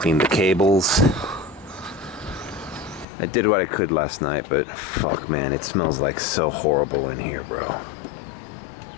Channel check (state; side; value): drops out; right; at 3.1 s